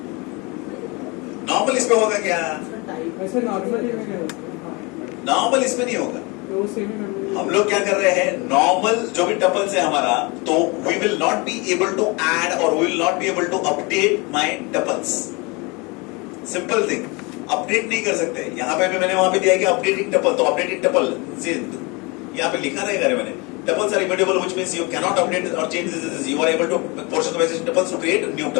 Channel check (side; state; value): right; quieter; 27.6 dB